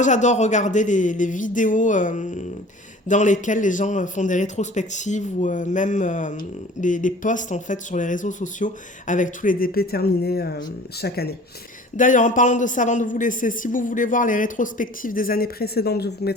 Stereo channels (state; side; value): normal; both; correlation 0.45